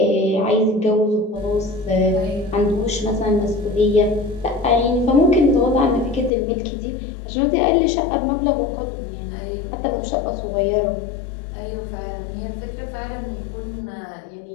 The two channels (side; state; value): right; drops out; at 6.3 s